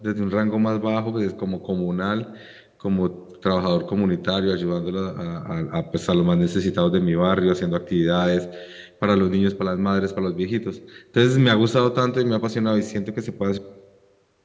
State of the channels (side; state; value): both; identical; correlation 1.00